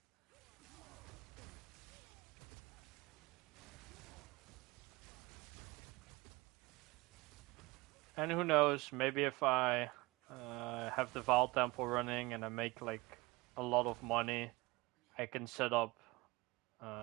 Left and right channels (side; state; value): left; quieter; 23.0 dB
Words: And who knows, maybe if I have the Val Temple running and I make like a lot of money, I can set up